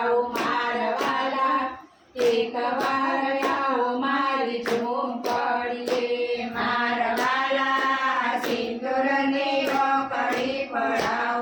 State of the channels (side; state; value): both; identical; correlation 1.00